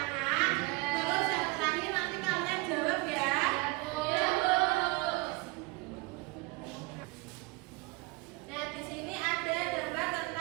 Terus yang terakhir nanti kalian jawab ya. Nah, di sini ada gambar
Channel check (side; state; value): left; quieter; 25.3 dB